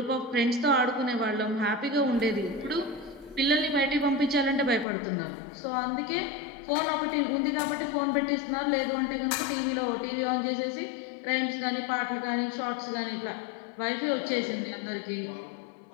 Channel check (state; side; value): drops out; right; at 4.9 s